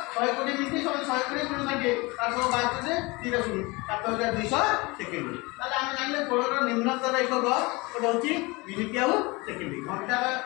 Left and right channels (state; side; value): quieter; right; 24.9 dB